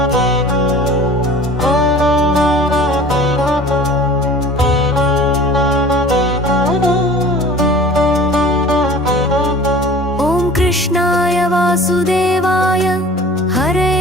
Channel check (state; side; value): normal; both; correlation 0.44